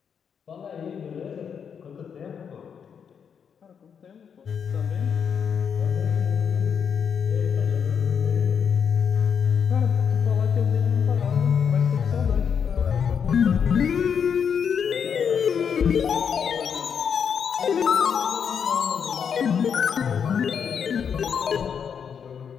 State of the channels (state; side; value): quieter; right; 7.2 dB